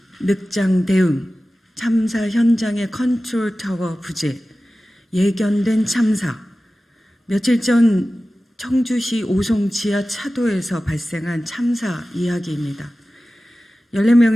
늑장 대응, 참사 현장의 컨트롤 타워 부재, 예견된 참사, 며칠 전 청주시 오송 지하 차도에서 발생한 참사 이야기입니다.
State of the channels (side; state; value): both; normal; correlation 0.96